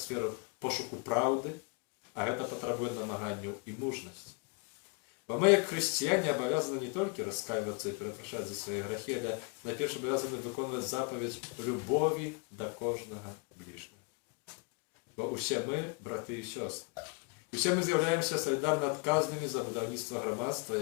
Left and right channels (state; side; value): quieter; right; 31.7 dB